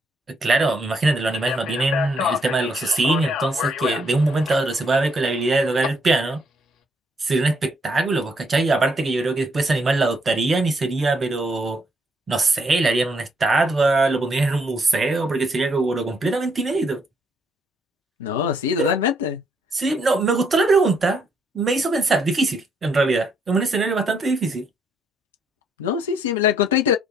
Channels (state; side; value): normal; both; correlation 0.72